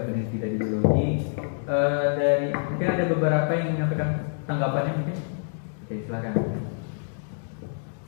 peneliti dari biologi. Dari mungkin ada beberapa yang menyampaikan tanggapannya mungkin. Oke, silakan.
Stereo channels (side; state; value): right; silent; digital silence